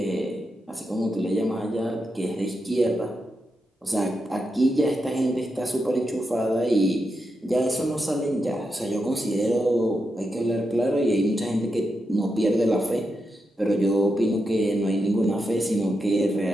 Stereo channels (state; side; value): normal; both; correlation 0.86